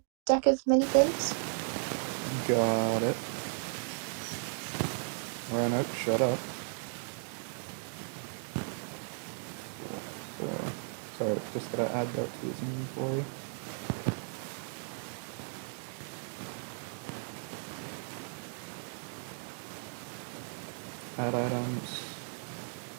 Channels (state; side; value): silent; left; 54 dB below the other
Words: deck of many things. Got it. Rhino, shut up. So, sorry, just gotta add that to his inventory. Add items.